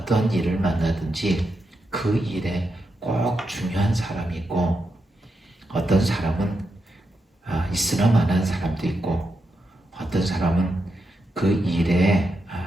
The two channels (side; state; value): both; normal; correlation 0.85